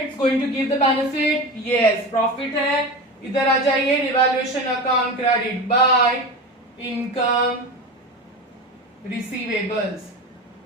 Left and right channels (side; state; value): both; normal; correlation 0.27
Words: It's going to give the benefit? Yes. Profit है. इधर आ जाइए. Revaluation account credit by income receivables.